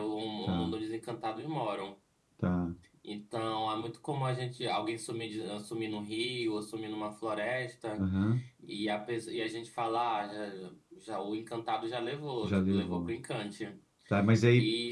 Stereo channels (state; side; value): identical; both; correlation 1.00